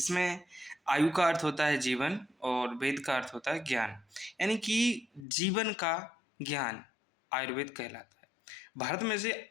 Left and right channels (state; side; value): drops out; right; at 5.2 s